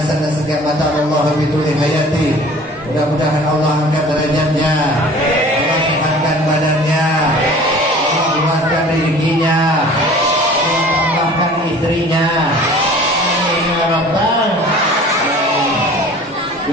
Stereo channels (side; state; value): both; normal; correlation 0.46